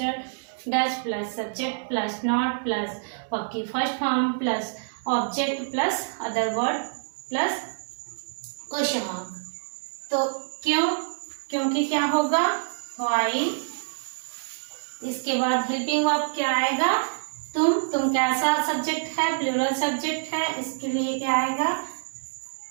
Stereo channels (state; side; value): silent; left; digital silence